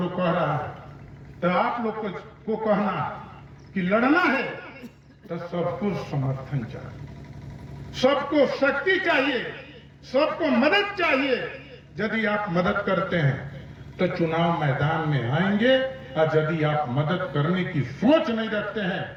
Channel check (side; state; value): both; identical; correlation 1.00